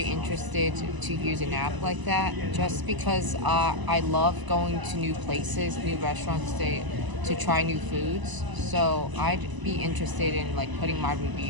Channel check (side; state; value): left; late; 1.0 ms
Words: interested to use an app like that, just because I love going to new places, new restaurants to try new foods. So I'd be interested in like putting my